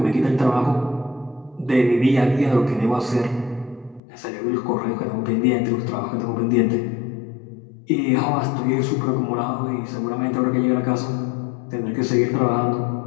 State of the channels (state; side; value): drops out; right; at 4.0 s